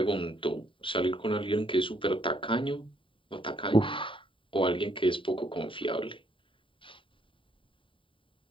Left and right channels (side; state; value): right; late; 0.25 ms